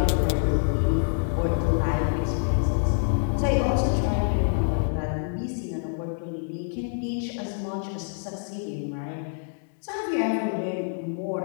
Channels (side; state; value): right; silent; digital silence